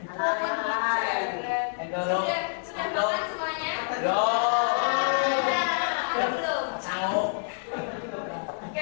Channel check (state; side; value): silent; right; digital silence